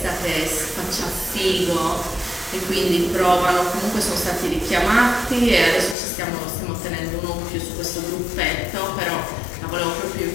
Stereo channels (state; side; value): drops out; right; at 6.0 s